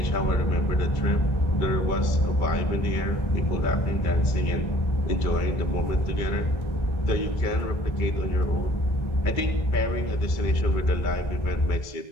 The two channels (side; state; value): right; late; 2.3 ms